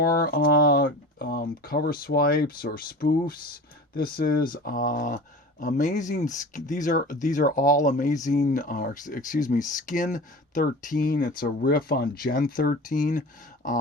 cover swipes or spoofs. This is amazing. These are all amazing. Skin 13. It's a riff on Gen 13,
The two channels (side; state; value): both; normal; correlation 0.35